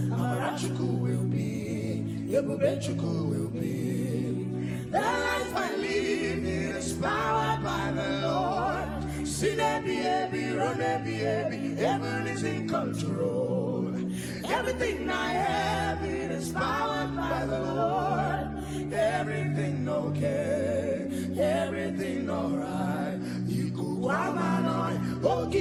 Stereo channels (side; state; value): both; identical; correlation 1.00